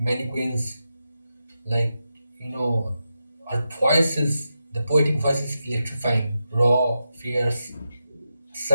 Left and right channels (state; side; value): inverted; both; correlation -0.88